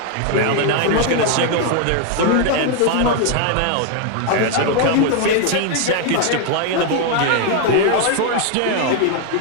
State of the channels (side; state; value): both; different; correlation 0.01